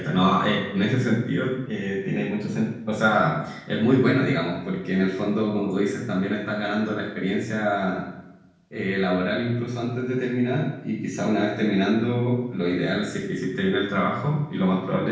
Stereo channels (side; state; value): both; identical; correlation 1.00